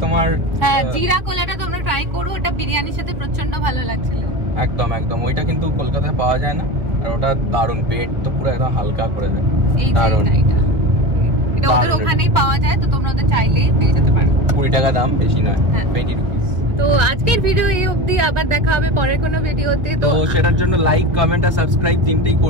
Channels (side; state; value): left; late; 1.5 ms